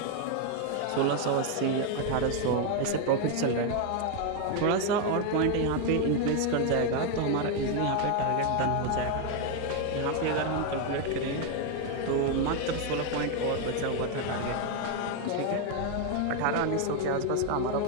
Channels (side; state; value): both; different; correlation 0.01